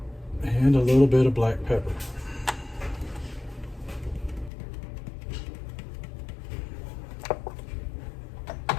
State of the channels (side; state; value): right; drops out; at 4.5 s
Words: And a little bit of black pepper.